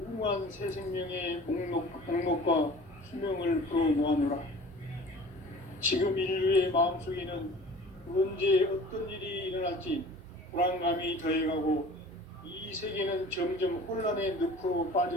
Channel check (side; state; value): both; normal; correlation 0.44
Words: 새 생명의 목록과 수명을 풀어놓아노라. 지금 인류의 마음속에는 언제 어떤 일이 일어날지 불안감이 더해가고 이 세계는 점점 혼란의 늪으로